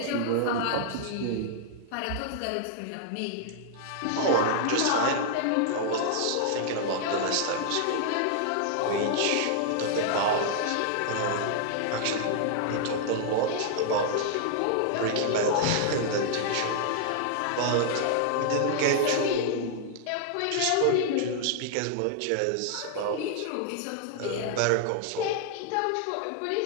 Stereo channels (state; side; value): different; both; correlation -0.01